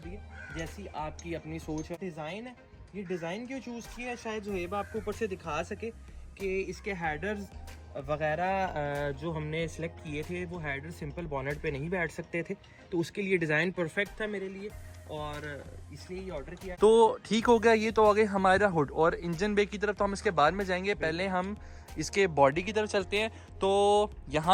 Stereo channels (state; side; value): identical; both; correlation 1.00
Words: दिया जैसी आपकी अपनी सोच है। डिज़ाइन है, ये डिज़ाइन क्यों चूज़ किया है शायद ज़ुहैब आपको ऊपर से दिखा सके कि इसके हेडर्स वगैरह जो हमने सेलेक्ट किए थे वो हेडर सिंपल बॉनेट पे नहीं बैठ सकते थे, तो उसके लिए डिज़ाइन परफेक्ट था मेरे लिए और इसलिए ये ऑर्डर किया। तो ठीक हो गया, ये तो आ गई हमारा हुड। और इंजन बे की तरफ तो हम इसके बाद में जाएंगे, पहले हम इसके बॉडी की तरफ चलते हैं। तो